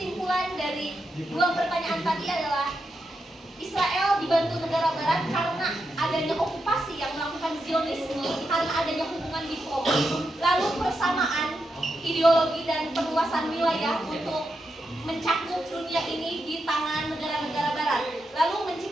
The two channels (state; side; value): normal; both; correlation 0.85